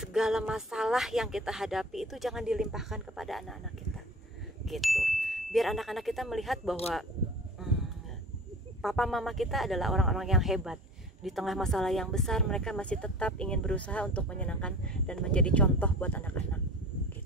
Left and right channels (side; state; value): both; normal; correlation 0.40